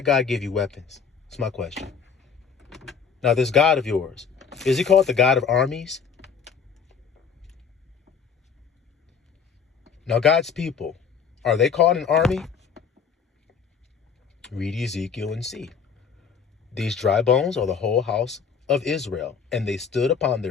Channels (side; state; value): right; quieter; 6.3 dB